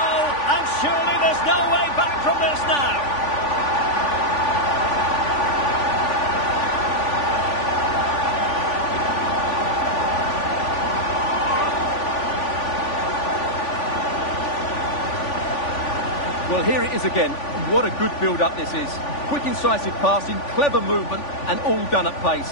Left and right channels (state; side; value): late; right; 3.5 ms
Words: And surely there's no way back from this now. Well, here it is again. What a good build-up this is. Quick, incisive passing, clever movement, and all done at pace,